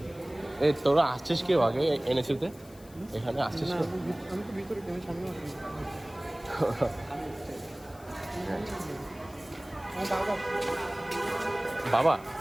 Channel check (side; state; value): left; noise; hiss, 24 dB below the sound